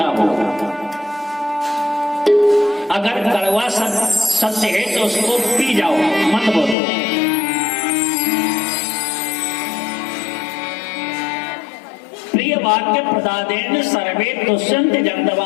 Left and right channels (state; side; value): drops out; right; at 6.8 s